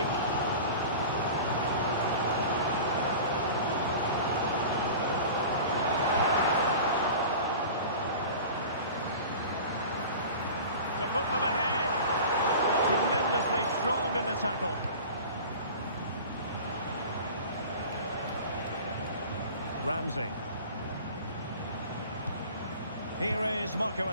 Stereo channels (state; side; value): inverted; both; correlation -0.38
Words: To put them ahead. Tremendously strong in the tackle. Ramsey. Here is Marco